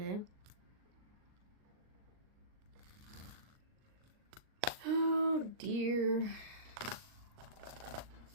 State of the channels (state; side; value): late; left; 38 ms